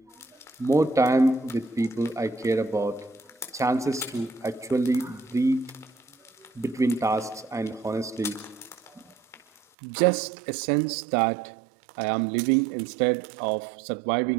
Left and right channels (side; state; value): left; drops out; at 9.6 s